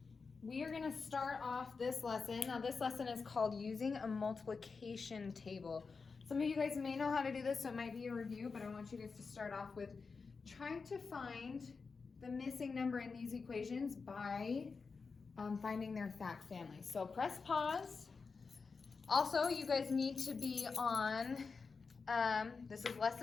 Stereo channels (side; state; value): right; quieter; 4.8 dB